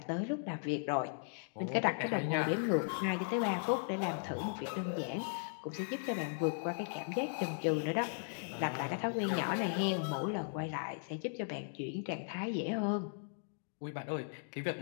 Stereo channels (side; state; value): right; silent; digital silence